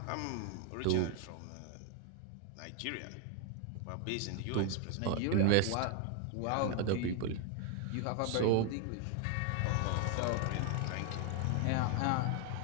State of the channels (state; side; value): different; both; correlation 0.00